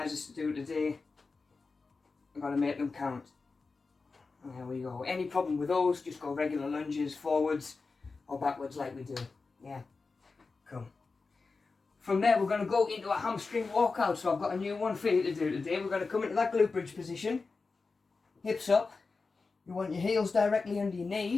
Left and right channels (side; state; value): right; quieter; 4.2 dB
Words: to do today. We've got to make them count. There we go. Any problem with those, just go regular lunges, forwards or backwards like we do. Yeah, cool. From there, we're going to go into a hamstring walkout. So I've got a new one for you to do today. We're going to come into that glute bridge position, hips up. You want your heels directly under your